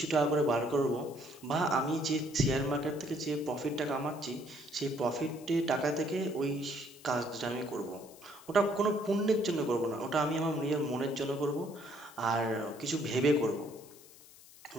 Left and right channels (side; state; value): left; noise; hiss, 21 dB below the sound